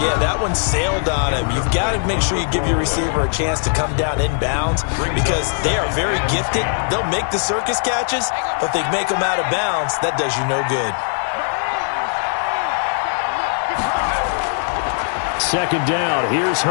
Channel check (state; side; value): silent; right; digital silence